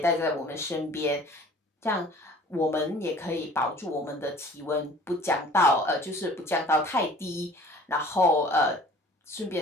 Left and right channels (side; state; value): both; normal; correlation 0.49